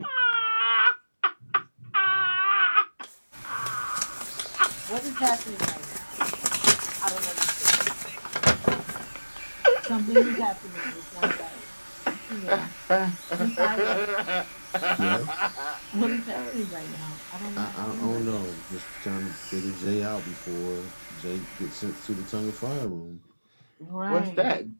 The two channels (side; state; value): both; inverted; correlation -1.00